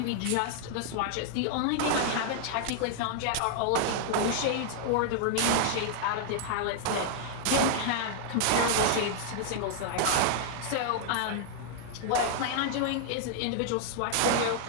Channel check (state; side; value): different; both; correlation -0.01